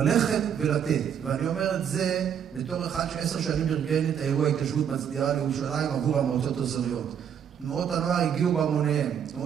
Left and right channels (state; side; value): quieter; left; 8.4 dB